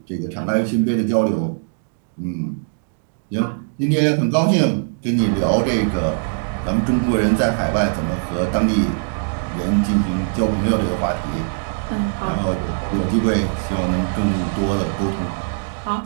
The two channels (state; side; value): silent; left; digital silence